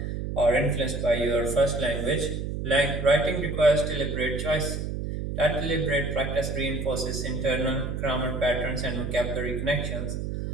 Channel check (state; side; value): noise; right; hum, 4 dB below the sound